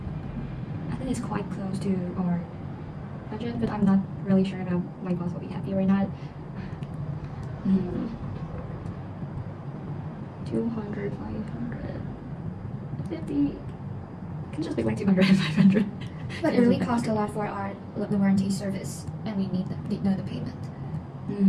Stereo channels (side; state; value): both; identical; correlation 1.00